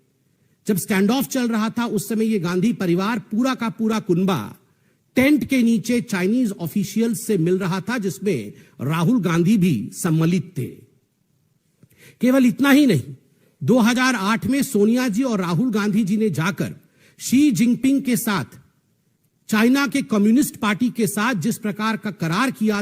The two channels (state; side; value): identical; both; correlation 1.00